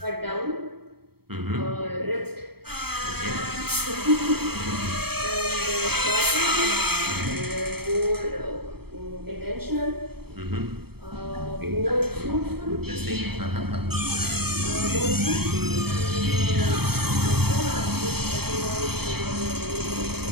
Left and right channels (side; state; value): left; late; 0.96 ms